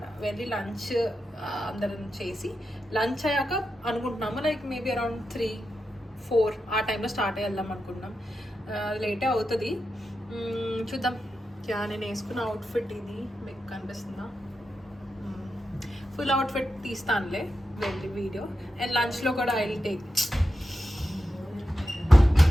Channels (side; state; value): both; normal; correlation 0.89